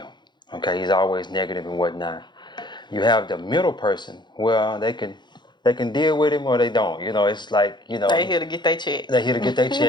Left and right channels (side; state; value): right; late; 0.21 ms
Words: Okay, he's always negative and whatnot. You have the middle person. Well, they can deal with him or they don't. It's like They here to get their check. they here to get their